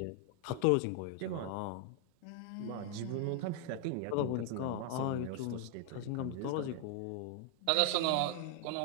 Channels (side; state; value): both; different; correlation 0.00